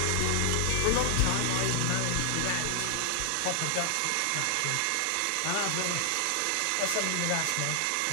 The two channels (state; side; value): different; both; correlation 0.00